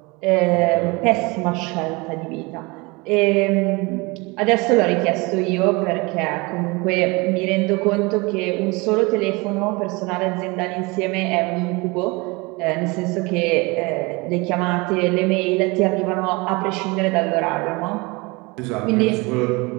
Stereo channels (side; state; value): left; quieter; 25.8 dB